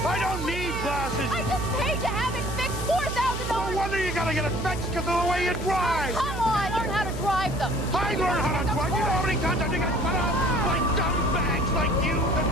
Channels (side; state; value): right; noise; hum, 5 dB below the sound